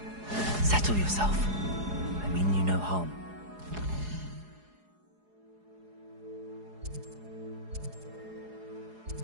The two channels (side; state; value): left; late; 4.8 ms